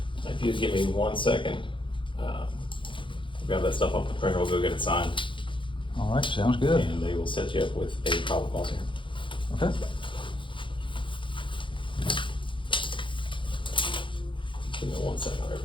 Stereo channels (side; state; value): right; late; 0.24 ms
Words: If you just give me 1 second, grab that stuff off the printer, we'll go get it signed, All right, sounds good. and they will set you up with a probable cause hearing. Okay. Give me 1 second,